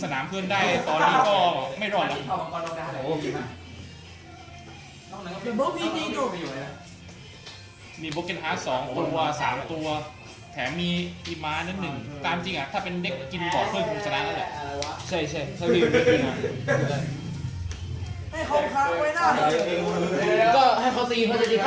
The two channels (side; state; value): both; identical; correlation 1.00